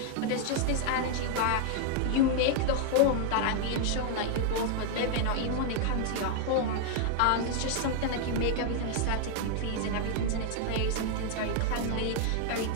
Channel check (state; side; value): different; both; correlation 0.00